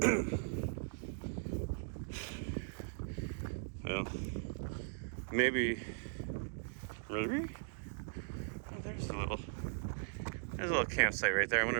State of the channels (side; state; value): left; silent; digital silence